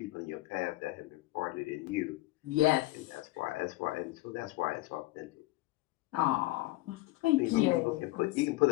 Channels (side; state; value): right; quieter; 19.3 dB